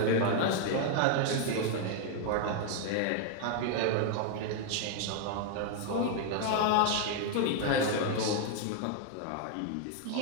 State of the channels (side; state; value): both; different; correlation 0.01